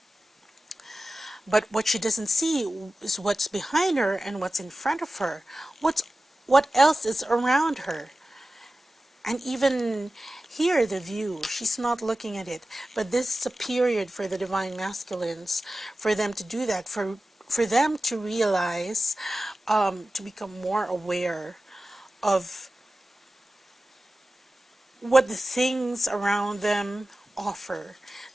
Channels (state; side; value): normal; both; correlation 0.95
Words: But what she doesn't see is what's behind her and what's in front of her. What else is around her? And even here, the view, she's not looking at it. But this is a period for the divine masculines, for them to do that, for them to realize, to become more aware of what the things around them offer,